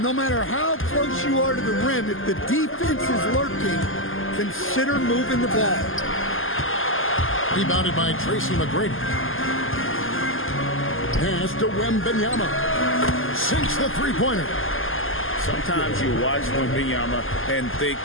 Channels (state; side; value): late; right; 0.59 ms